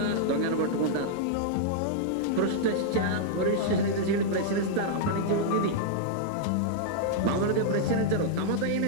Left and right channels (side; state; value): both; different; correlation -0.02